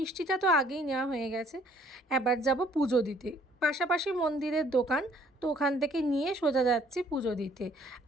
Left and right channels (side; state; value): both; normal; correlation 0.60